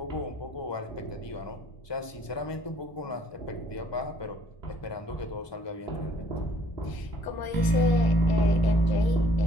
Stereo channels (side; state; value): right; late; 1.0 ms